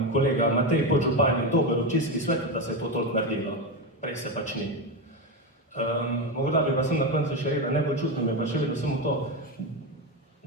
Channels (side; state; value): both; normal; correlation 0.14